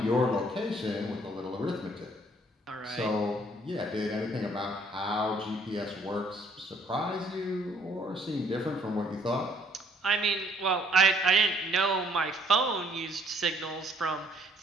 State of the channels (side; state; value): both; normal; correlation 0.63